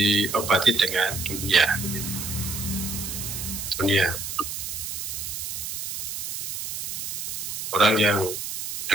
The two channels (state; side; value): noise; right; hiss, 5 dB below the sound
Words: dengan dunia. Orang yang